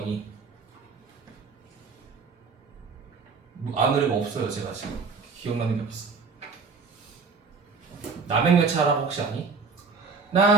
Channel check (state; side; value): quieter; left; 4.9 dB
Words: 아는 노래가 없어요. 제가 지금 기억나는 게 없어. 남행열차라고 혹시 아니?